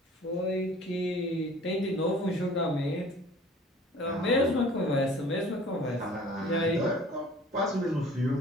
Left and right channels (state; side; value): normal; both; correlation 0.48